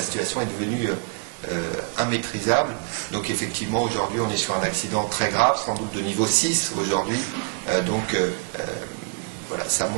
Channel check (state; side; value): quieter; left; 34.8 dB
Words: situation est devenue immaîtrisable. Donc effectivement, aujourd'hui, on est sur un accident très grave, sans doute de niveau 6 aujourd'hui. Voilà, ça